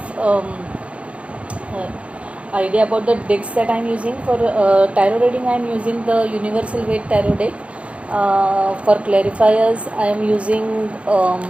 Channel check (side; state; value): left; late; 0.062 ms